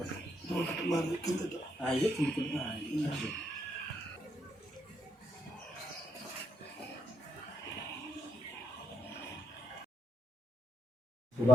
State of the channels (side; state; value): both; normal; correlation 0.78